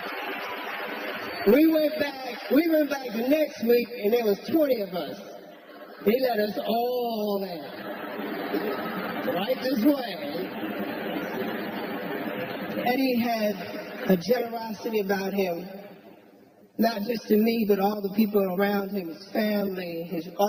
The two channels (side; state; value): both; identical; correlation 1.00